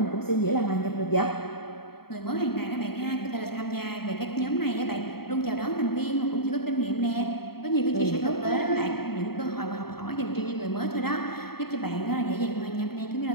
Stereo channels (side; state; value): right; late; 0.95 ms